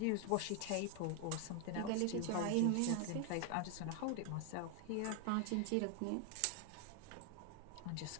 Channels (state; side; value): different; both; correlation 0.00